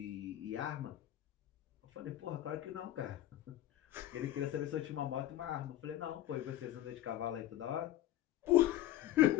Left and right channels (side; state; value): right; quieter; 13.7 dB